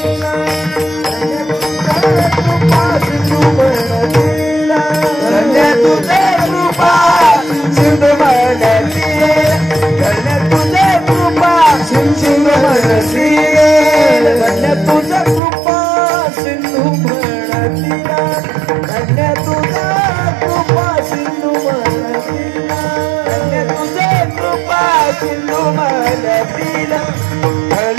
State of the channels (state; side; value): drops out; left; at 15.4 s